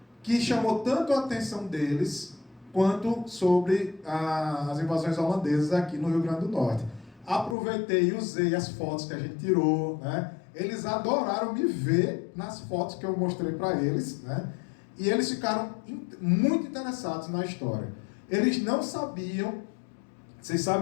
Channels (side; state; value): right; drops out; at 7.6 s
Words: que chamou tanto a atenção deles quanto sobre as invasões holandesas aqui no Rio Grande do Norte. Aproveitei e usei as fotos que a gente tirou, né? Eles adoraram me ver nas fotos que eu mostrei para eles, né? E eles ficaram muito interessados na história. Eles não sabiam. Vocês